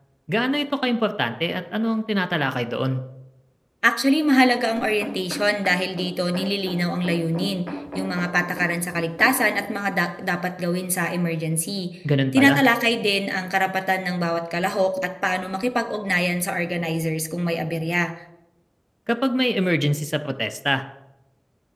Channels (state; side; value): identical; both; correlation 1.00